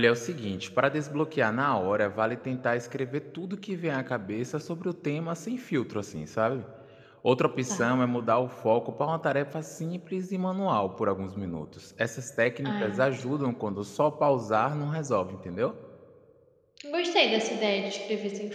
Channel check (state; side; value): identical; both; correlation 1.00